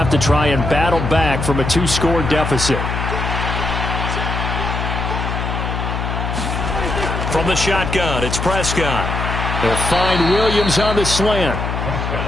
to try and battle back from a 2-score deficit. From the shotgun, it's Prescott. They'll find Williams on the slant.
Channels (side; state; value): left; noise; hum, 3 dB below the sound